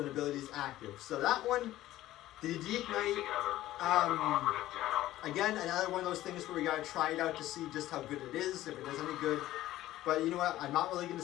ability is active. So that one, the Deep Night, again, another one of those things where we gotta try it out to see just how good it is, if it is any good. But you know what? I'm not really gonna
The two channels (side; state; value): right; quieter; 14.9 dB